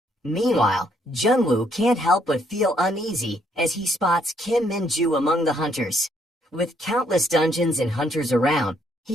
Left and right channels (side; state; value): both; normal; correlation 0.70